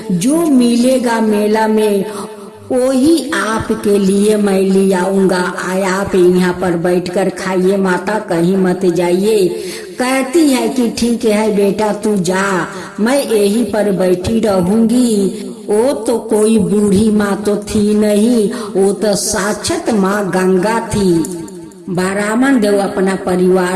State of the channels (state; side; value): identical; both; correlation 1.00